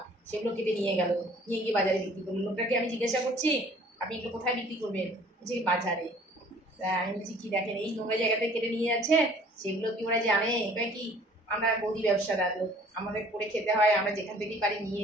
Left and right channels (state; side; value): normal; both; correlation 0.54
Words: সেগুলো কেটে নিয়ে গেল, নিয়ে গিয়ে বাজারে বিক্রি করলো। লোকটাকে আমি জিজ্ঞাসা করছি আপনি এগুলো কোথায় বিক্রি করবেন, যে বাজারে। আমি বলছি কি দেখেন এই নোংরা জায়গাতে কেটে নিয়ে যাচ্ছে, সেগুলো কি ওরা জানে? এটা কি আমরা গদি ব্যবসাদার লোক, আমাদের করে খেতে হয়, আমরা যেখান থেকেই পারি নিয়ে